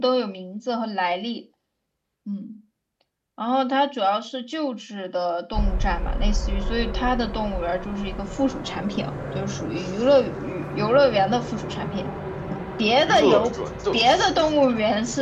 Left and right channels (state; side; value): identical; both; correlation 1.00